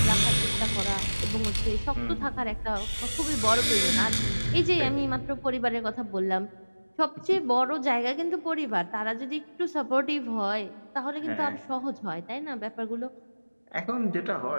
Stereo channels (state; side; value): inverted; both; correlation -1.00